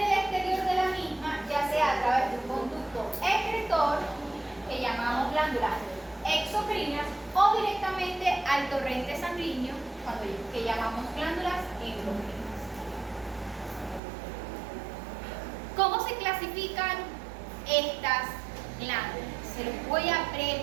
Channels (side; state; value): left; drops out; at 14.0 s